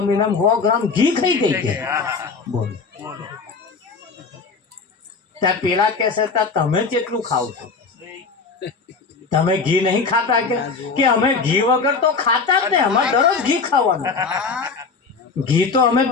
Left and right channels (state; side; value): quieter; right; 4.7 dB